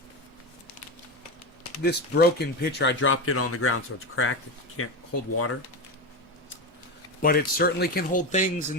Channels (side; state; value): both; normal; correlation 0.17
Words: this broken pitcher, I dropped it on the ground, so it's cracked. It can't hold water. But it certainly can hold things